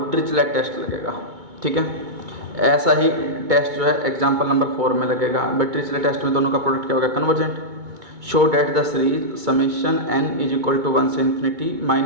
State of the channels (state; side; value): late; left; 2.2 ms